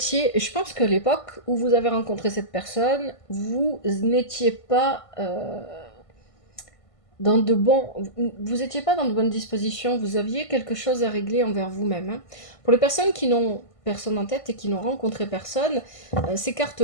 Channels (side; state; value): right; late; 1.5 ms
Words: Je pense qu'à l'époque où vous avez rencontré cette personne, vous n'étiez pas... vous n'étiez pas dans de bonnes dispositions, vous aviez quelque chose à régler envers vous-même. Hein. Pour les personnes qui n'ont personne en tête et qui n'ont rencontré personne, ces